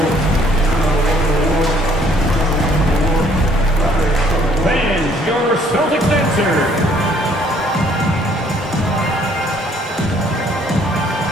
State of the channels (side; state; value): both; normal; correlation 0.61